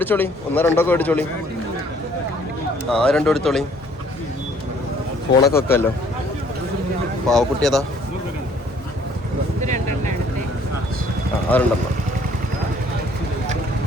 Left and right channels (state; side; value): normal; both; correlation 0.60